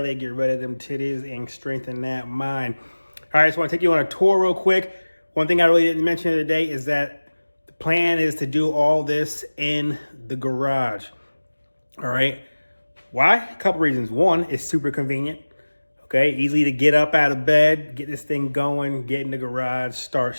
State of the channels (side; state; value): both; inverted; correlation -1.00